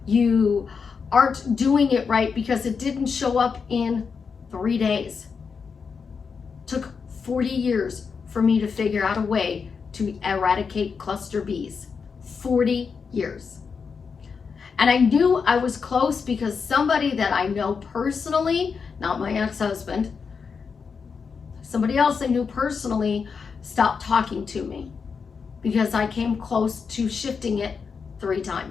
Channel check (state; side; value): quieter; right; 5.7 dB